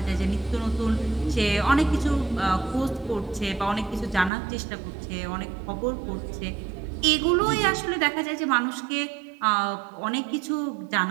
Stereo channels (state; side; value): drops out; left; at 4.3 s